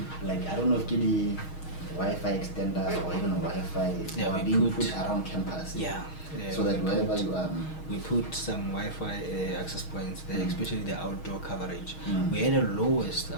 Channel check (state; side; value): late; right; 6.4 ms